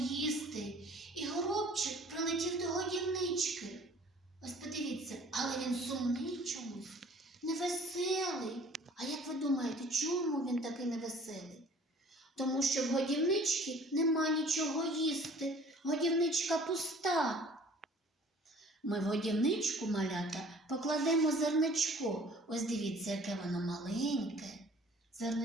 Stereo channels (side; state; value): both; normal; correlation 0.51